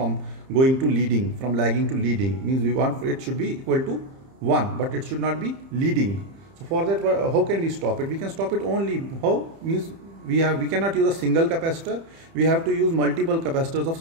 going to leading, from lagging to leading? Means we want it should be equal to 1, but it should not be leading. So for that, how can we stop it? We can stop it only how? Means we cannot use a single capacitor. We have to use multiple capacitors of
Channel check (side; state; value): left; late; 30 ms